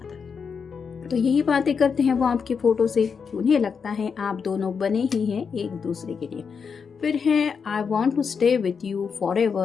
तो यही बातें करते हैं वो आपकी फ़ोटो से कि उन्हें लगता है आप दोनों बने ही हैं एक दूसरे के लिए। फिर है I want to stay with you फॉर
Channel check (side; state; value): right; quieter; 6.0 dB